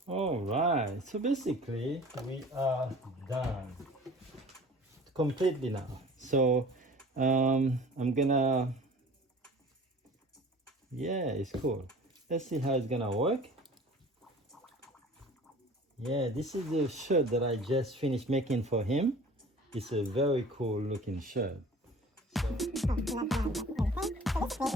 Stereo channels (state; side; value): normal; both; correlation 0.45